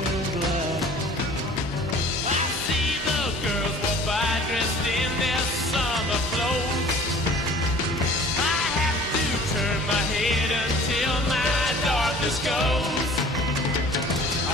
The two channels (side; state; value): both; normal; correlation 0.48